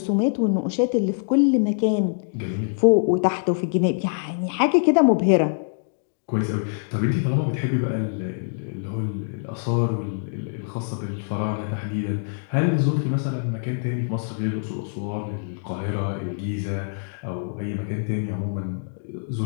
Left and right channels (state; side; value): silent; right; digital silence